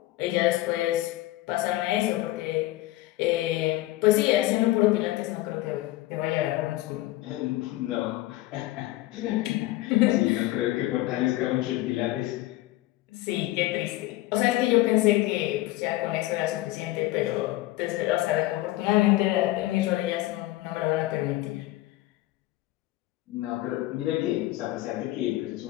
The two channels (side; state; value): right; quieter; 17.2 dB